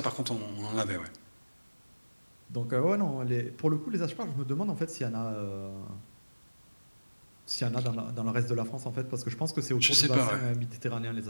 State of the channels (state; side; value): inverted; both; correlation -1.00